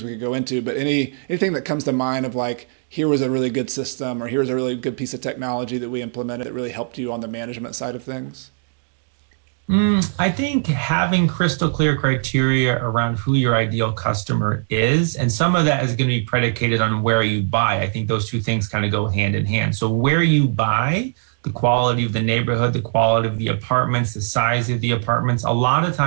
we could go into, but anything that comes to mind of like, here was a really good system or here's a really good piece of technology that we implemented that really helped you on the management side of things? I think having crystal clear criteria around who your ideal customer is, and some of that is going to be predicated on where you buy. I think those two things kind of go hand in hand. So where you buy, the quality of the neighborhood, the quality of the apartments, the size of the apartments, a lot of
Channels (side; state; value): left; silent; digital silence